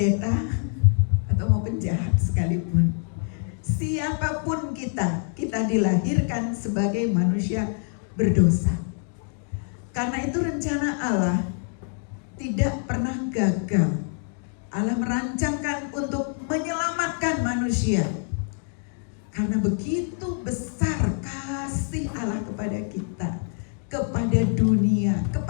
atau mau penjahat sekalipun, siapapun kita dilahirkan sebagai manusia berdosa. Karena itu rencana Allah tidak pernah gagal. Allah merancangkan untuk menyelamatkan manusia. Karena begitu besar kasih Allah kepada kita, kepada dunia,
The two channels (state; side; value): silent; right; 56 dB below the other